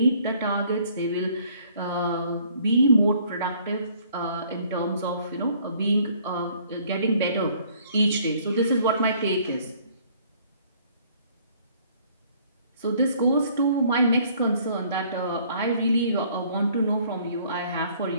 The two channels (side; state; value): both; inverted; correlation -0.60